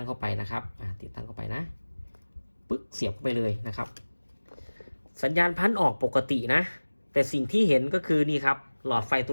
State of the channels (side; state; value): both; inverted; correlation -1.00